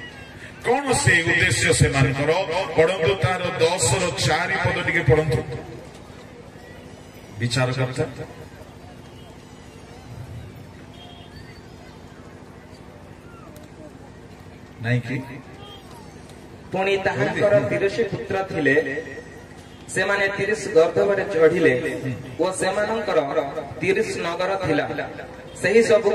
କଣ ସେ ଉଦ୍ଦେଶ୍ୟ ସେମାନଙ୍କର? ପଢନ୍ତୁ ତାର 10ର 4 ପଦ ଟିକେ ପଢନ୍ତୁ। ବିଚାରକର୍ତ୍ତା ନାଇଁ କି? ପୁଣି ତାହାଙ୍କର 30 ପୁତ୍ର ଥିଲେ, ସେମାନେ 30 ଗର୍ଦ୍ଧବରେ ଚଢିଲେ ଓ ସେମାନଙ୍କର 30 ନଗର ଥିଲା। ସେହି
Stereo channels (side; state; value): both; identical; correlation 1.00